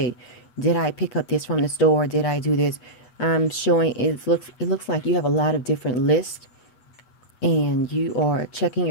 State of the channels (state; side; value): late; right; 8.3 ms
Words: did I pick up this from the store? Did I do this? I'm showing it looks like you have a lot of different lists, and you are checking